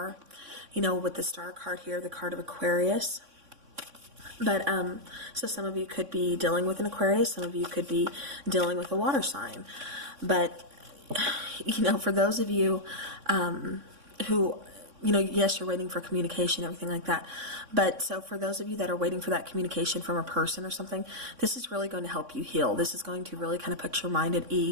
with the star card here, the card of Aquarius. But, so some of you could be dealing with an Aquarius, some of you could be dealing with a water sign. But, for those of you, who, yes, you're waiting for communication, everything like that. But so for those of you that are waiting for that communication from a person or something, this is really going to help you heal. This is going to really kind of put your mind at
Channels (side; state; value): left; late; 3.6 ms